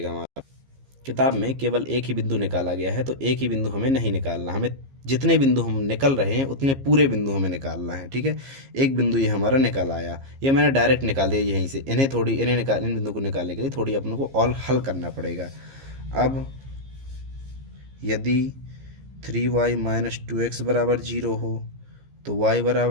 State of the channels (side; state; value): left; late; 15 ms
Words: हमारा किताब में केवल एक ही बिंदु निकाला गया है, तो एक ही बिंदु हमें नहीं निकालना, हमें जितने बिंदु हम निकल रहे हैं उतने पूरे बिंदु हमें निकालना है। ठीक है, एक बिंदु ये हमारा निकल आया, ये मैंने डायरेक्ट निकाल दिया यहीं से। इन बिंदु को निकालने के लिए थोड़ी अपने को और हल करना पड़ेगा। अब यदि 3y माइनस 2x बराबर जीरो हो तो y